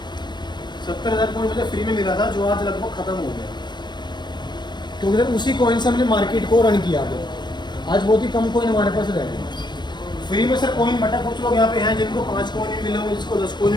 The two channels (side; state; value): right; late; 0.21 ms